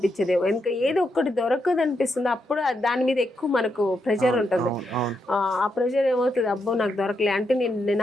ఇంకా ఏదో ఒకటి దొరకదు అనిపిస్తుంది. అప్పుడు దాని మీద ఎక్కువ మనకు ప్రెషర్ ఉంటుంది. ఆ ప్రెషర్ ఏమవుతుంది, అబ్బో నాకు దొరకలే అంటే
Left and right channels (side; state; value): both; normal; correlation 0.82